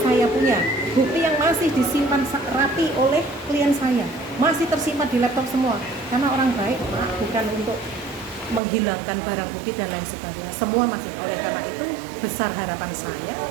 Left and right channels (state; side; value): drops out; left; at 8.6 s